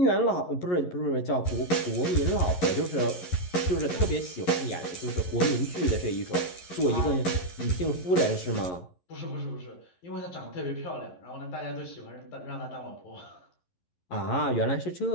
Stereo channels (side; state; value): right; late; 11 ms